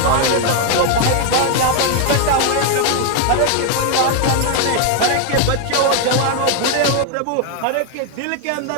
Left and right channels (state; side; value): different; both; correlation 0.00